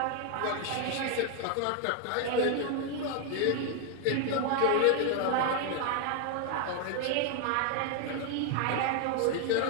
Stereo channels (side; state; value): both; different; correlation 0.00